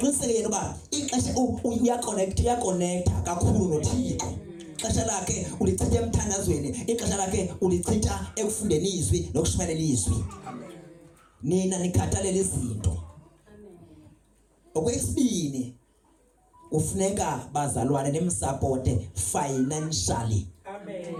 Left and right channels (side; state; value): both; identical; correlation 1.00